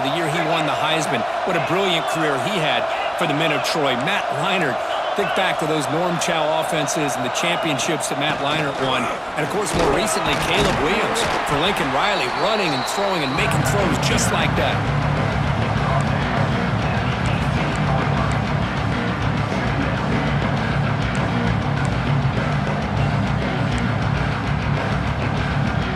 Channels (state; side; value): identical; both; correlation 1.00